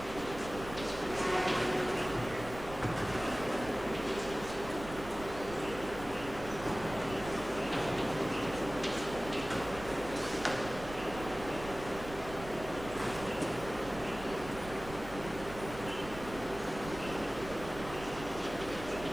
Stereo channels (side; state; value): right; noise; rumble, 13 dB below the sound